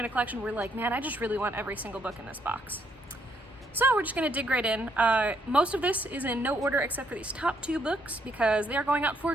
a collection where like, man, I just really want every single book in this box. So we're just gonna dig right in. Most of this is in no order except for these top 2 books because they are going out for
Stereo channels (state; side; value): normal; both; correlation 0.72